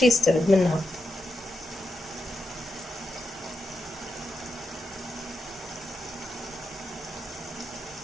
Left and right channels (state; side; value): normal; both; correlation 0.86